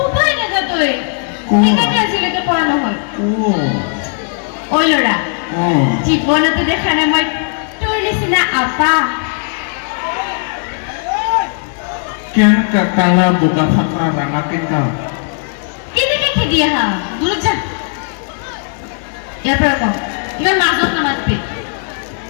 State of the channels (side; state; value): right; silent; 62 dB below the other